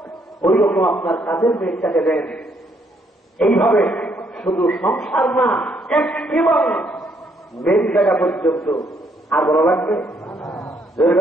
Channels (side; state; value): both; normal; correlation 0.71